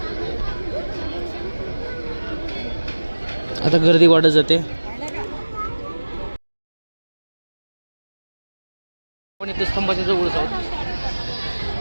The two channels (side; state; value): both; inverted; correlation -1.00